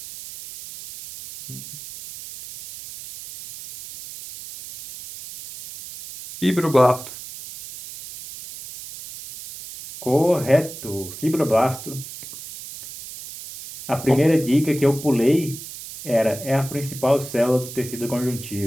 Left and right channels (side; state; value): right; noise; hiss, 13 dB below the sound